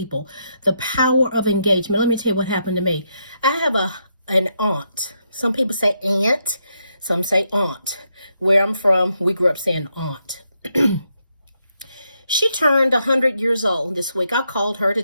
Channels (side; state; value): both; inverted; correlation -0.80